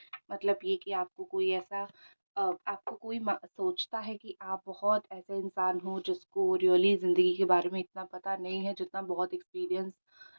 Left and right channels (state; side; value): inverted; both; correlation -1.00